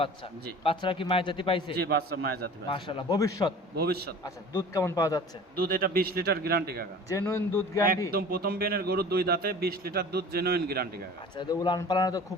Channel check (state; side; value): normal; both; correlation 0.42